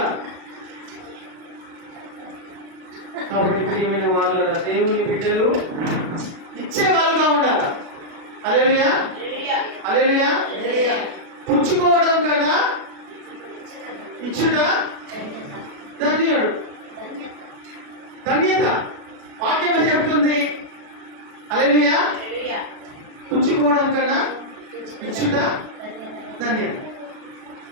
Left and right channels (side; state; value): left; late; 37 ms